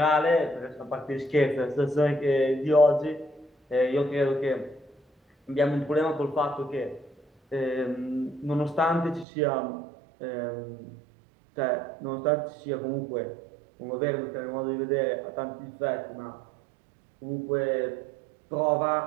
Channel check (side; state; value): left; drops out; at 9.2 s